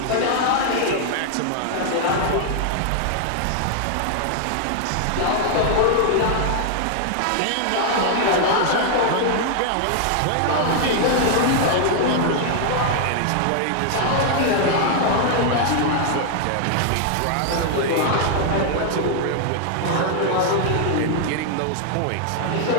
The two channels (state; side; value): different; both; correlation 0.00